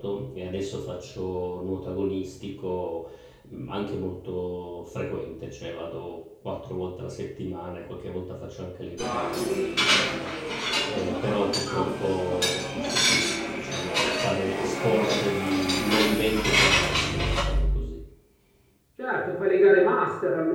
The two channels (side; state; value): both; identical; correlation 1.00